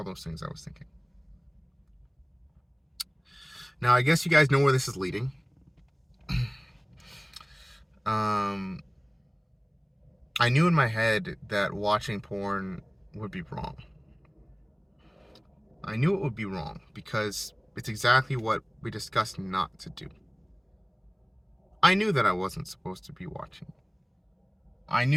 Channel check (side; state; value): both; identical; correlation 1.00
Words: things I was thinking. Now I guess you guys know where this is leading. Um, I knew in my head that watching porn would be wrong. I knew it would be wrong because it's exactly what we discussed not to do. I knew that I wasn't supposed to be watching. I